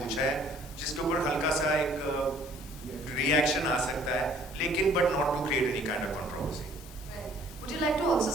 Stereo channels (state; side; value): normal; both; correlation 0.58